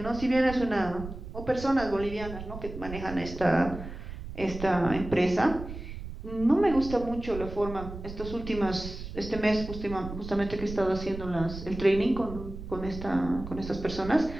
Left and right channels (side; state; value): right; noise; rumble, 10 dB below the sound